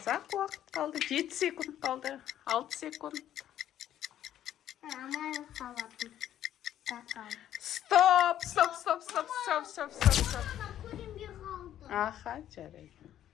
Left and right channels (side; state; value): right; quieter; 11.4 dB